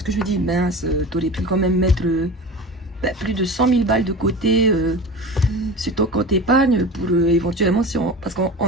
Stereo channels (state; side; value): normal; both; correlation 0.33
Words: que je me dis, mince, t'aurais pu quand même mettre plus de 100 000 balles de côté sur ton compte épargne pour éventuellement, si on, parce qu'on